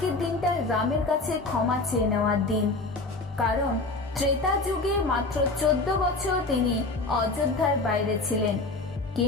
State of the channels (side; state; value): right; quieter; 3.3 dB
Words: দিনটা রামের কাছে ক্ষমা চেয়ে নেওয়ার দিন, কারণ ত্রেতা যুগে মাত্র 14 বছর তিনি অযোধ্যার বাইরে ছিলেন,